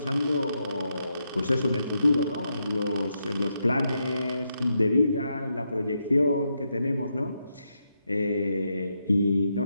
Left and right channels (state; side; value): inverted; both; correlation -0.83